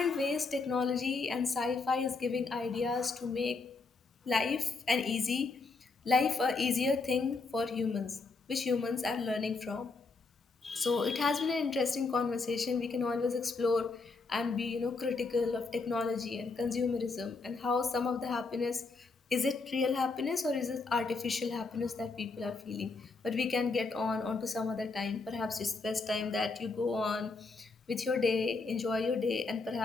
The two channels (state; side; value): quieter; right; 4.0 dB